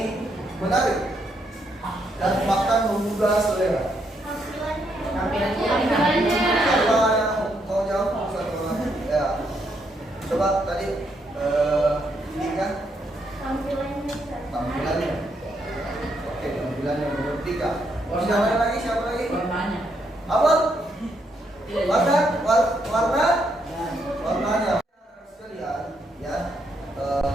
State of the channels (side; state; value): both; normal; correlation 0.76